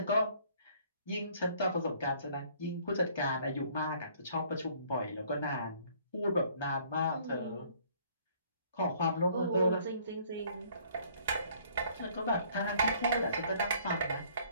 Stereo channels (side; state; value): both; inverted; correlation -0.59